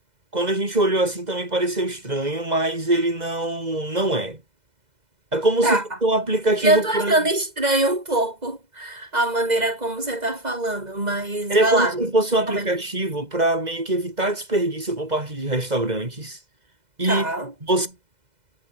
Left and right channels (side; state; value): left; late; 2.0 ms